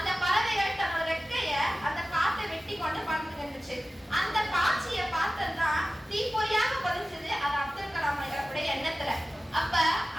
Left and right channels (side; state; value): both; normal; correlation 0.96